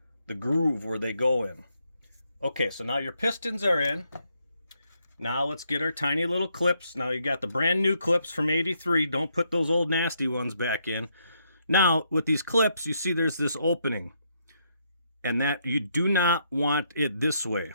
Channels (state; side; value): inverted; both; correlation -0.76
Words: the groove where they go in. Okay, so now your pistons are in. Now let's get our tiny little clips. Now you got the brand new clips from 83. Don't put those old nasty ones back in. Now with these clips, you see there's this opening. And that you do not want it this way.